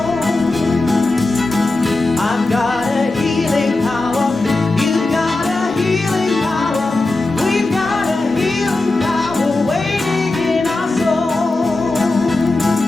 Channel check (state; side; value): quieter; right; 3.1 dB